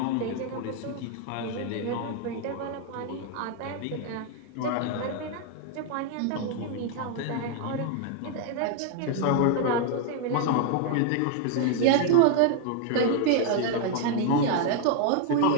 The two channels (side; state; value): both; different; correlation 0.00